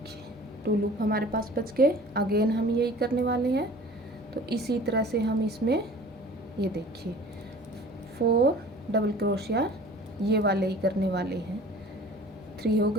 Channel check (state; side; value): normal; both; correlation 0.45